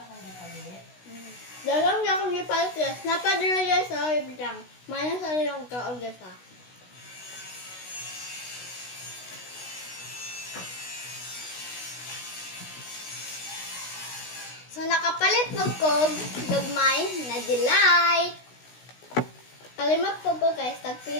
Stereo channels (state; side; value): late; right; 16 ms